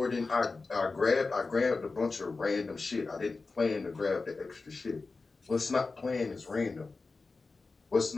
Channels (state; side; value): quieter; right; 3.9 dB